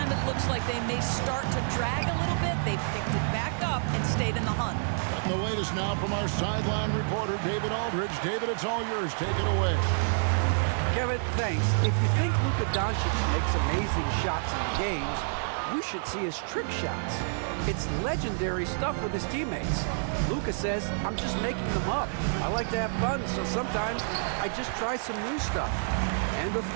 it looks like they may start to drag a little bit, they've picked it back up and stayed in the hunt. Getting the latest now from our sideline reporter, David Aldridge. David, it's all yours. Take it away. Kevin, thanks. If you think Luka Doncic makes amazing shots in the games, you should see his trick shots. It's legendary stuff with his teammates. Luka says, I'm just making them up. I like to have fun, so sometimes I just try some new stuff. And of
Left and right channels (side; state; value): left; silent; digital silence